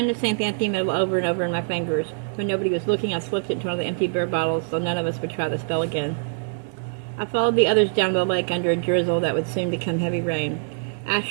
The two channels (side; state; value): left; silent; digital silence